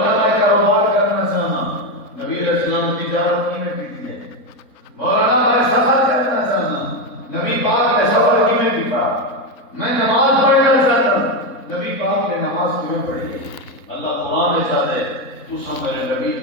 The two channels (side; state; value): right; late; 4.0 ms